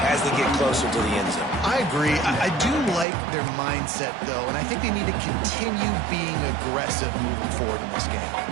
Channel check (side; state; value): left; drops out; at 3.1 s